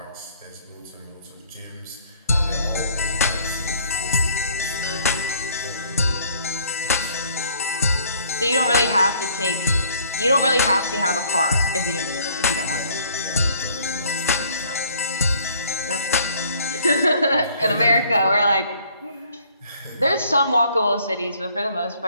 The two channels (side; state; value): both; inverted; correlation -0.59